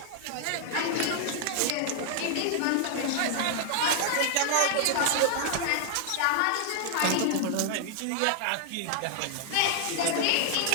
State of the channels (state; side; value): different; both; correlation -0.01